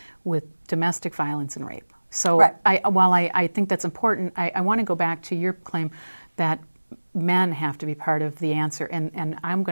with domestic violence and rape. So while I think that's important, I want to go back to your claim that men have to be part of the answer. And I'm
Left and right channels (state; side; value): inverted; both; correlation -1.00